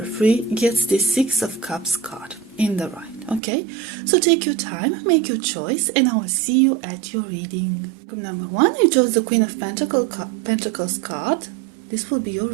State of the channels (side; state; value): left; drops out; at 3.4 s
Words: 3 gets the Six of Cups card in the right. Okay, so take your time, make your choice, and I will see you at your reading. Group number 1, you chose the Queen of Pentacles card. This will be your